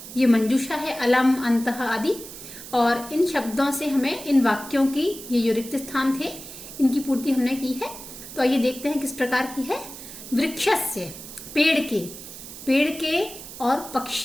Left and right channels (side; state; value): right; noise; hiss, 13 dB below the sound